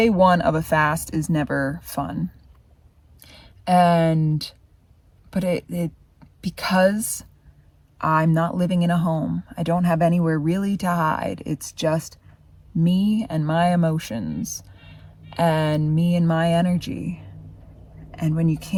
one of a fast is never fun. But because I'm not living in a home, I don't have anywhere really to hide. It's just me and my emotions and me and my energy. And when you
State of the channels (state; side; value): identical; both; correlation 1.00